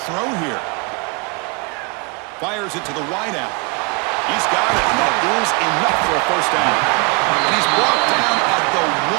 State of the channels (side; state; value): left; quieter; 31.4 dB